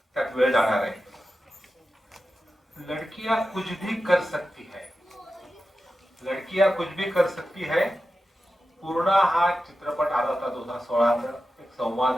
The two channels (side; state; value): both; normal; correlation 0.92